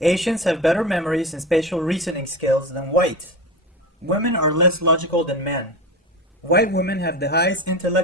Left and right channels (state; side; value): normal; both; correlation 0.25